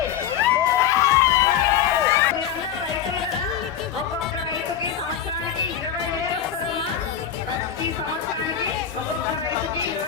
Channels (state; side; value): quieter; right; 9.1 dB